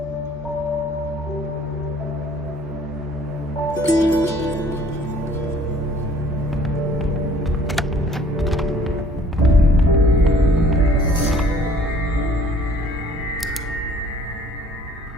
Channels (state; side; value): normal; both; correlation 0.55